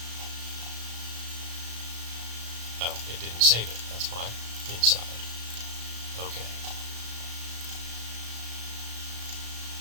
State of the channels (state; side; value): late; left; 35 ms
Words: Oh, it didn't save it, that's why. Inside. Okay.